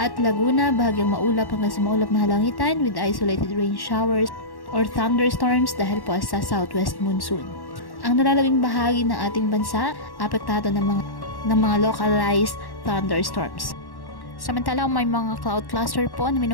Laguna, bahagyang maulap hanggang sa maulap na halangitan with isolated rain showers or thunderstorms dahil po sa southwest monsoon. Ang nalalabing bahagi ng ating bansa, apektado ng mga localized thunderstorms. Samantalang may mga cloud cluster po na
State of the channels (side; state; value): right; late; 1.1 ms